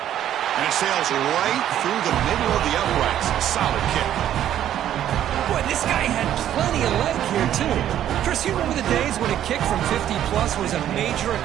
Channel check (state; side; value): quieter; left; 11.2 dB